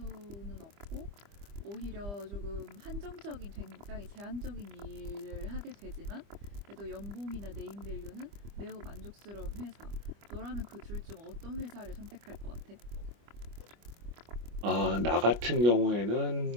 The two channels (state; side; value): late; left; 25 ms